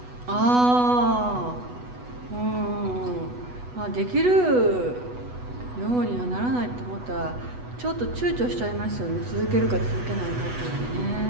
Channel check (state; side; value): late; left; 8.1 ms